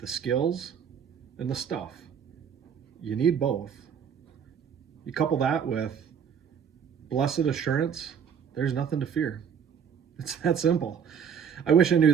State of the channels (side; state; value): left; quieter; 7.6 dB